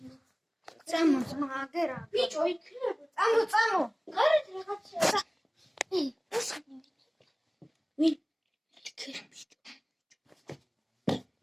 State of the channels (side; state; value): both; identical; correlation 1.00